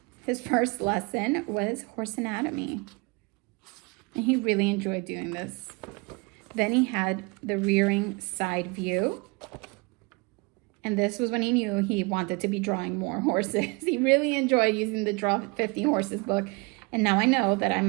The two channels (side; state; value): left; quieter; 28.5 dB